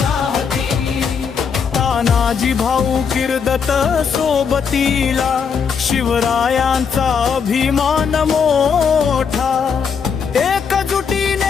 राहती। तानाजी भाऊ किर्दत सोबतीला, शिवरायांचा अभिमान मोठा।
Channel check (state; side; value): quieter; right; 6.4 dB